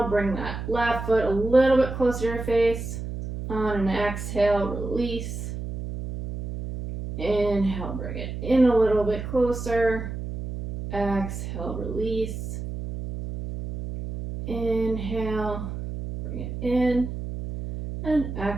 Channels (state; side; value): noise; right; hum, 6 dB below the sound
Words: bring that left foot a little bit closer to your face. On an exhale, release. Inhale, bring it in a little bit closer. Exhale, release. Inhale, bring it in. And